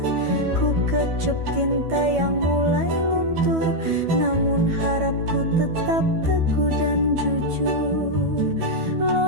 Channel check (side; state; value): left; late; 12 ms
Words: Ku kecup tinta yang mulai luntur, namun harapku tetap teguh dan jujur.